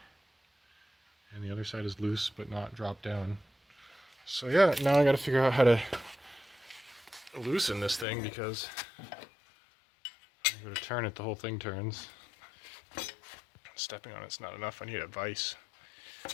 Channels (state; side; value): drops out; right; at 8.1 s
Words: And the other side is loose but not dropped down. So yeah, now I gotta figure out how to loosen this thing because when I go to turn it, the whole thing turns. Stepping on it's not enough, I need a vise.